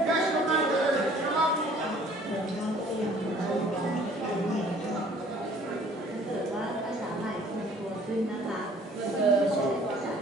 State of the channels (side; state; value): both; normal; correlation 0.54